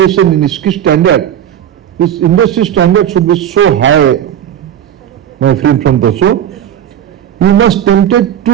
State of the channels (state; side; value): quieter; left; 10.3 dB